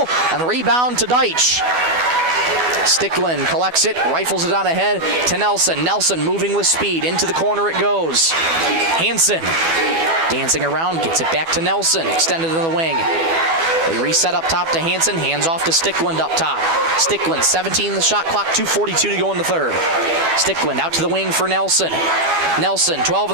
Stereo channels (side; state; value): left; late; 12 ms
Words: and the rebound to Deitch. Stickland collects it, rifles it on ahead to Nelson. Nelson moving with speed, into the corner it goes. Hansen dancing around, gets it back to Nelson, extended in the wing. They reset up top to Hansen, hands off to Stickland up top. Stickland, 17 in the shot clock, 2:42 to go in the third. Stickland out to the wing for Nelson. Nelson, 12 in